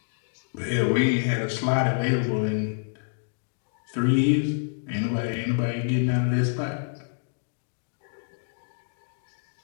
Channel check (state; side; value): silent; right; digital silence